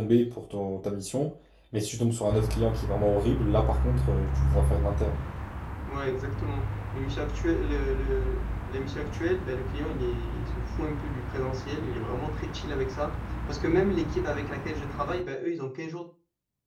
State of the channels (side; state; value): both; identical; correlation 1.00